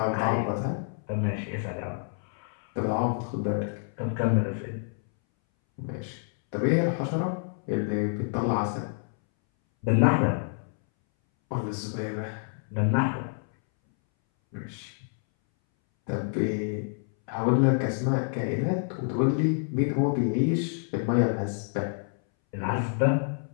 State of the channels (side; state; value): right; silent; 59 dB below the other